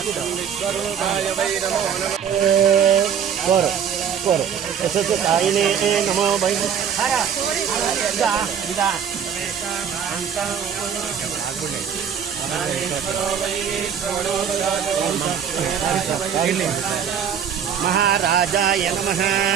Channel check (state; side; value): quieter; left; 7.9 dB